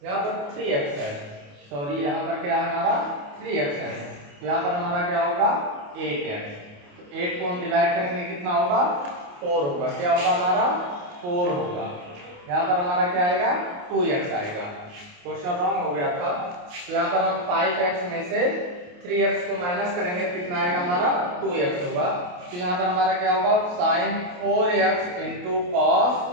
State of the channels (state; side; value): late; left; 28 ms